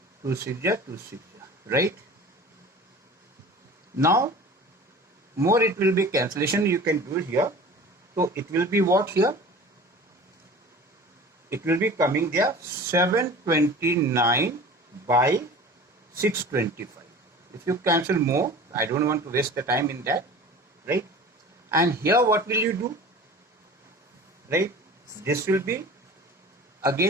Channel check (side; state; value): both; normal; correlation 0.40